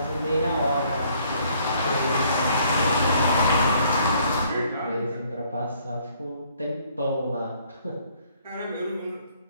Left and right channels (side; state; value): both; inverted; correlation -0.63